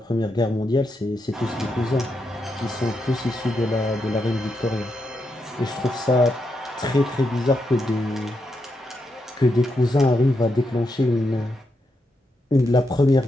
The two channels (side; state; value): both; normal; correlation 0.83